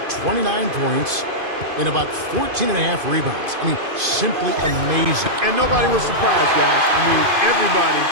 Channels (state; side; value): late; left; 2.5 ms